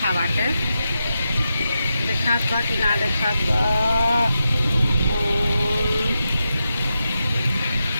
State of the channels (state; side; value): inverted; both; correlation -0.88